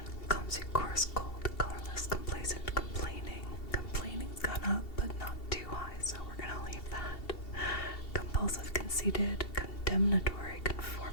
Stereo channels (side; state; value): right; late; 2.7 ms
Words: clumsy, coarse, cold, colorless, complacent, complaining. Complaining's gone up, but not too high, so we're gonna leave that. Compulsive, conceited, condemnatory,